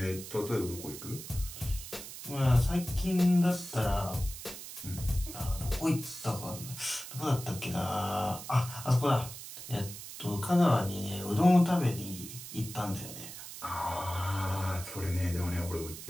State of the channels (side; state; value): right; noise; hiss, 11 dB below the sound